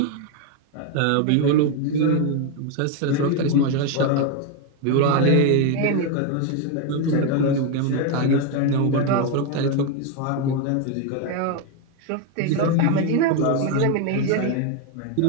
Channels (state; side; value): different; both; correlation 0.01